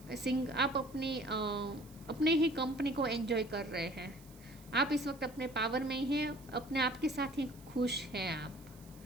अपने ही कंपनी को एंजॉय कर रहे हैं, आप इस वक्त अपने पावर में ही हैं, अपने आप के साथ ही खुश हैं आप,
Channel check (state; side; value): noise; right; hiss, 24 dB below the sound